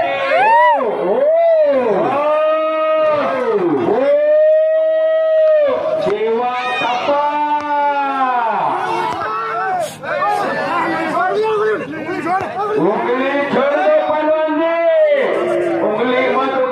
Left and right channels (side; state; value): both; identical; correlation 1.00